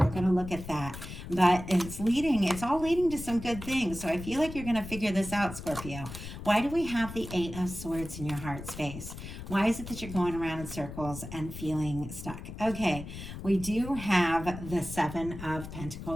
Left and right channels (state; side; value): noise; left; rumble, 10 dB below the sound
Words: going to look at that. But it's all leading to some good things. So I feel like you're going to figure this out, Scorpio. Why do we have the Eight of Swords in your heart space? Why is it that you're going around in circles and feeling stuck? Okay, we do have the Seven of